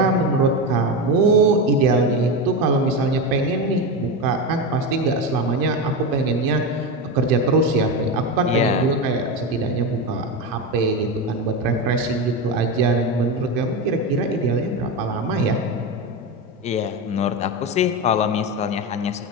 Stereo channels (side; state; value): both; normal; correlation 0.16